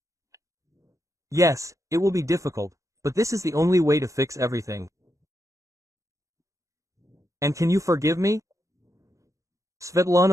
Yes, it will be difficult, but this is the only way to fix everything. And can you forgive me?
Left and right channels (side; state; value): left; late; 0.15 ms